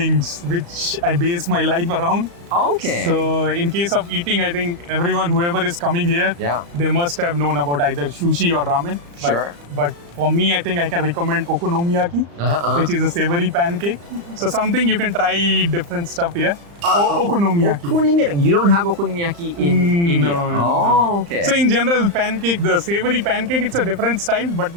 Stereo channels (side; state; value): left; late; 35 ms